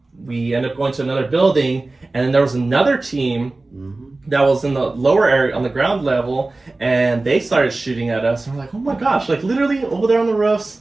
we ended up going to another building. And then there was another team that was in the lower area on the ground level, and they started shooting at us. And we're like, oh my gosh, like literally over there on the roofs,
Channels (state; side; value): quieter; left; 3.2 dB